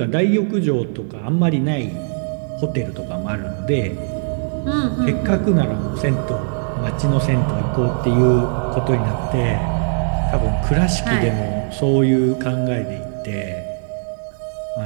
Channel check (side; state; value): left; silent; 66 dB below the other